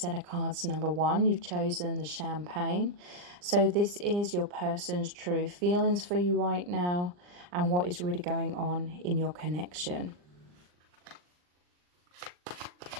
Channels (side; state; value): left; late; 39 ms